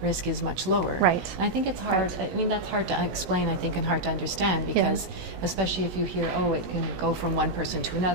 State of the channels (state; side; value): late; left; 17 ms